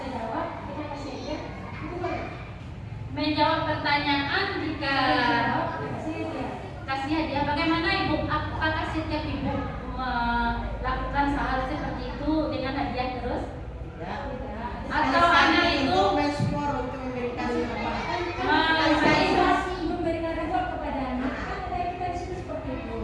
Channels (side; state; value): both; identical; correlation 1.00